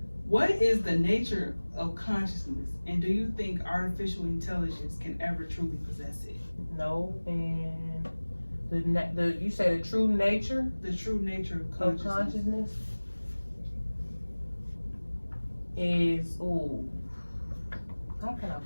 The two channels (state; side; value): inverted; both; correlation -1.00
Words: what is the nature of consciousness, and do you think artificial intelligence can ever truly possess it? No, and you say the true nature? The true nature of consciousness is, how can I